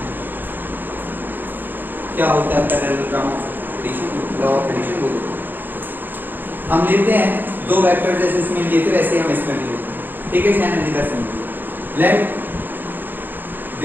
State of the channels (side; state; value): left; late; 0.091 ms